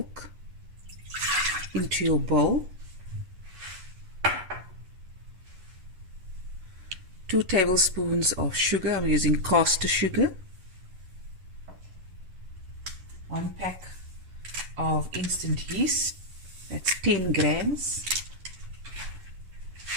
into your bowl, 2 tablespoons of sugar, I'm using caster sugar, 1 pack of instant yeast, that's 10 grams.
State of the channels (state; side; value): late; left; 11 ms